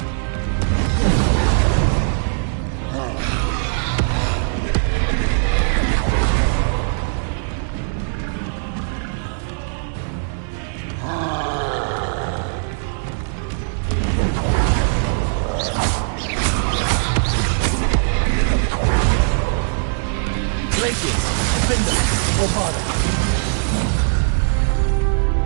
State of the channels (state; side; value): silent; left; 62 dB below the other